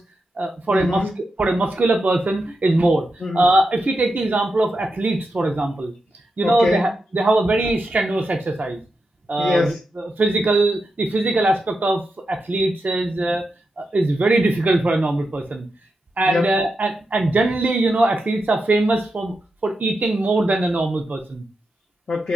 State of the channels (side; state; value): both; normal; correlation 0.87